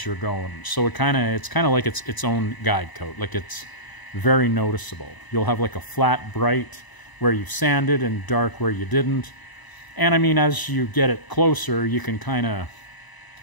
you're going. So it's kind of like it's its own guide coat. Like, it's very noticeable. You'll have like a flat, bright where you've sanded and dark where you didn't. And I mean, as you get it closer, you can kind of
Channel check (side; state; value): right; late; 1.0 ms